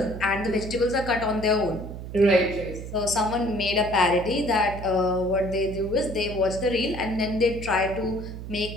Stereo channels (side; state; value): right; noise; hum, 9 dB below the sound